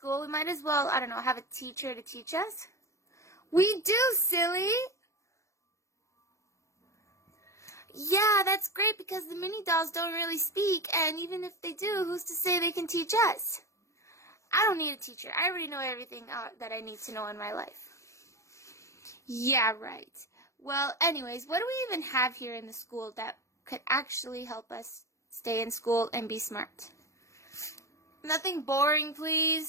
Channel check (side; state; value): right; late; 0.14 ms